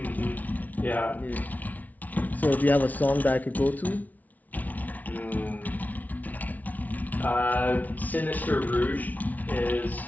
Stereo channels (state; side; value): late; right; 0.076 ms